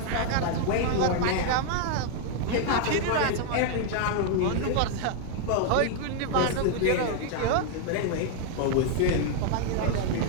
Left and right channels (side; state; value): both; different; correlation 0.00